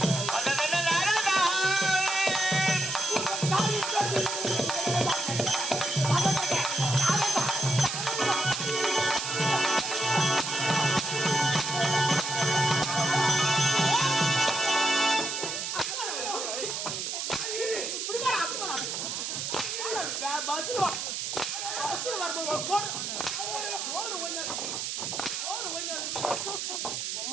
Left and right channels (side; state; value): right; noise; hiss, 3 dB below the sound